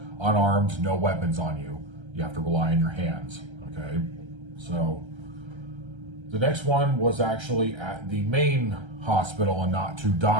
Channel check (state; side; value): late; left; 1.3 ms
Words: unarmed, no weapons on you. You have to rely on your hands. Okay, so the next one was actually at the main hospital and not to